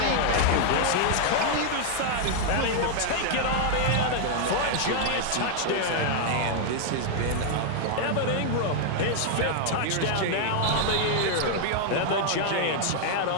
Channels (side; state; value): both; different; correlation 0.00